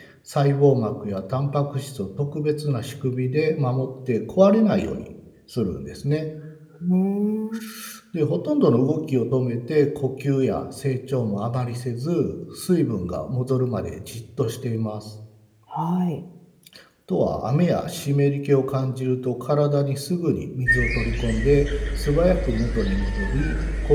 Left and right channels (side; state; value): both; identical; correlation 1.00